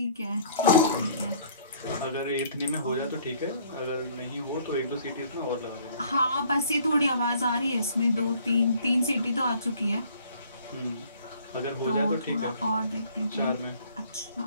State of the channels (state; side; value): inverted; both; correlation -0.57